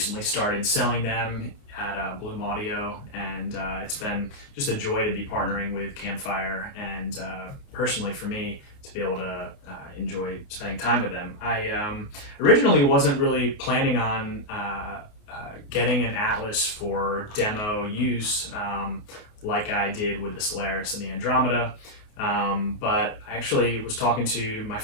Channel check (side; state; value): right; late; 29 ms